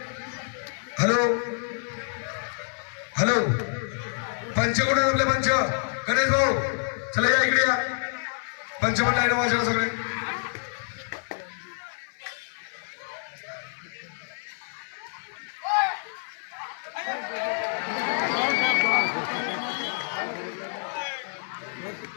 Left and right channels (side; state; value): right; silent; 56 dB below the other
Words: हॅलो हॅलो, पंच कोण आहेत आपले? पंच गणेश भाऊ चला या इकडे या. पंच पण लाईन वाजवा सगळे.